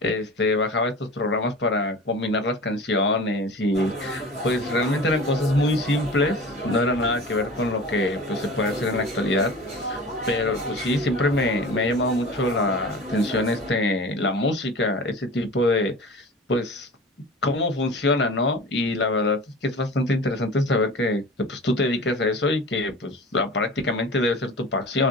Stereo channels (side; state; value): both; normal; correlation 0.37